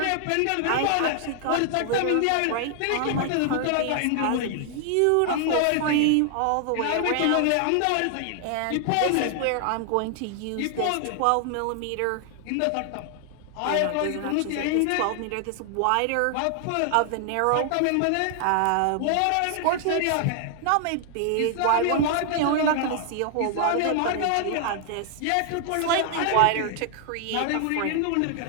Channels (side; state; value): both; different; correlation 0.00